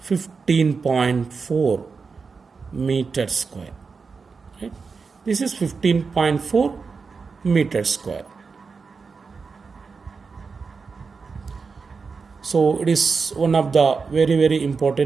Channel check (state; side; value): quieter; left; 4.9 dB